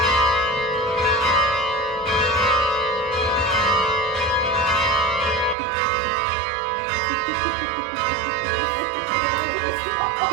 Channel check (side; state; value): left; drops out; at 5.6 s